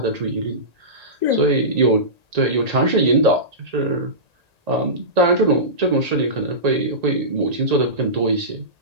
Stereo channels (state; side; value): late; left; 1.8 ms